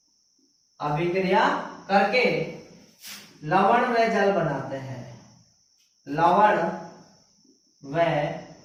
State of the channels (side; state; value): both; identical; correlation 1.00